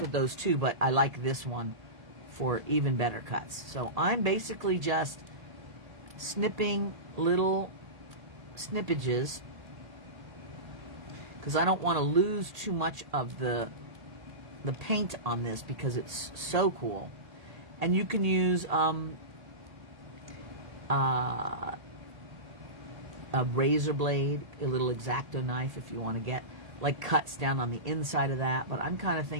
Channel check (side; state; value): left; late; 1.8 ms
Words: those too, but I like this one for even better cuts. So I'm basically just snipping little snippages because I don't want to lose too much of the paint on this because it's so cool. And you can use a razor blade, a little X-Acto knife if you want to get like cuts down on the inside of that. But I'm kind of